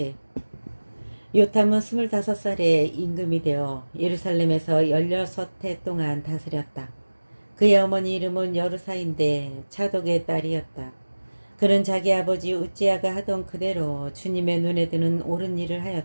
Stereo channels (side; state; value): both; inverted; correlation -1.00